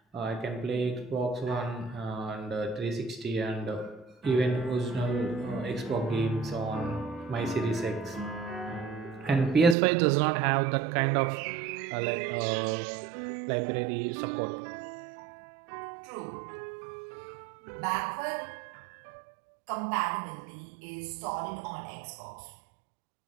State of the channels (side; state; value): left; drops out; at 9.8 s